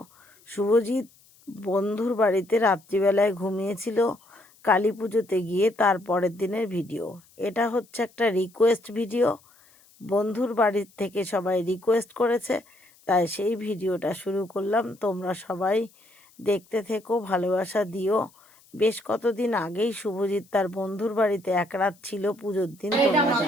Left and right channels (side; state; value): left; noise; hiss, 29 dB below the sound